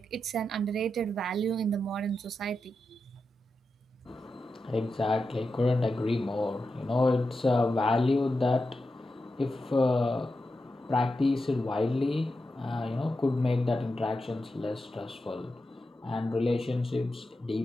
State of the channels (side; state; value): both; normal; correlation 0.89